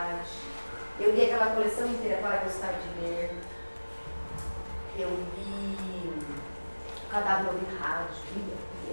eu li aquela coleção inteira para gostar de ler. Eu li O Cadáver Ouvir Rádio,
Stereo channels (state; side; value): inverted; both; correlation -1.00